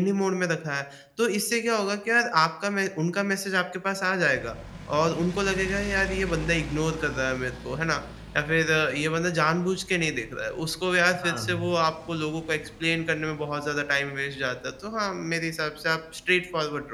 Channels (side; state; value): both; identical; correlation 1.00